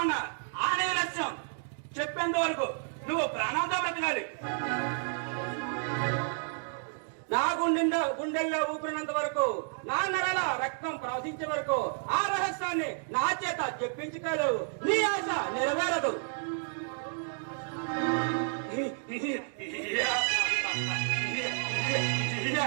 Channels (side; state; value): left; silent; 57 dB below the other